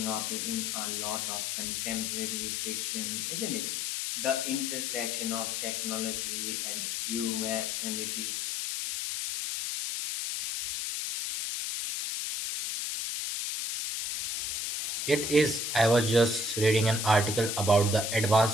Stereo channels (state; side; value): noise; left; hiss, 1 dB below the sound